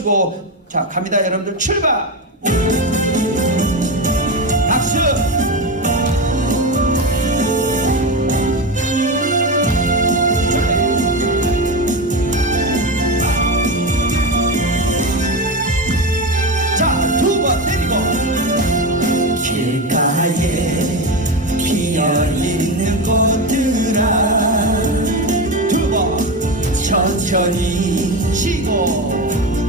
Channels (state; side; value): normal; both; correlation 0.18